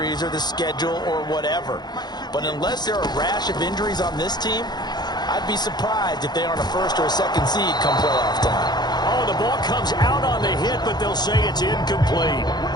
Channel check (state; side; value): late; right; 0.20 ms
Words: or the schedule or whatever. But unless there are a rash of injuries on this team, I'd be surprised if they aren't a 1st or a 2nd seed come playoff time. Oh, the ball comes out on the hit, but they'll say it's incomplete.